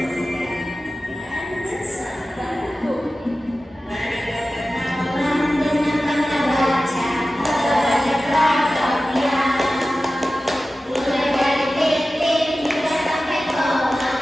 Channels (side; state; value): both; normal; correlation 0.95